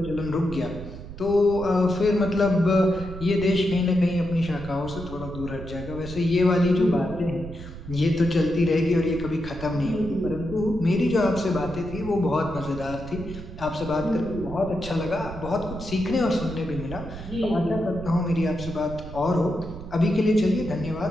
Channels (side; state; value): right; noise; rumble, 11 dB below the sound